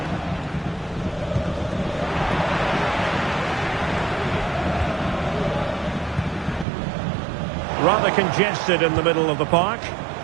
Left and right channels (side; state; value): left; drops out; at 6.7 s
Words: Rather congested in the middle of the park.